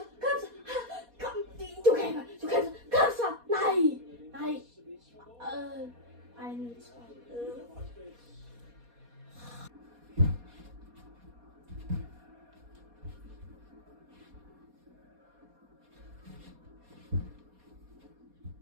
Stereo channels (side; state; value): left; late; 4.2 ms